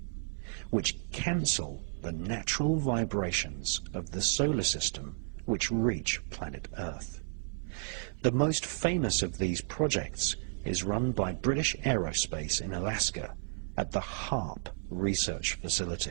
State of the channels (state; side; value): silent; left; 56 dB below the other